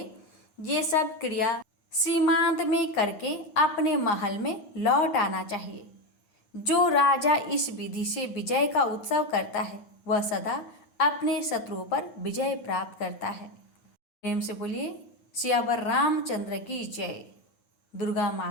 ये सब क्रिया सीमांत में करके अपने महल में लौट आना चाहिए। जो राजा इस विधि से विजय का उत्सव करता है वह सदा अपने शत्रुओं पर विजय प्राप्त करता है। प्रेम से बोलिए सियावर रामचंद्र की जय, दुर्गा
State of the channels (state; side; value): late; right; 9.7 ms